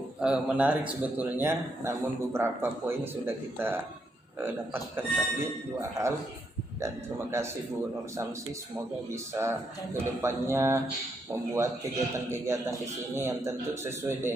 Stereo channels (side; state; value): both; normal; correlation 0.78